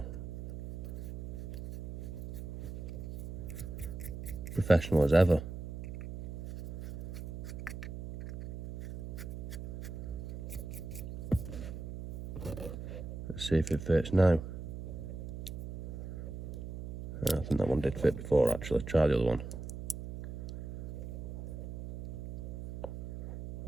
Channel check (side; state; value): right; noise; hum, 8 dB below the sound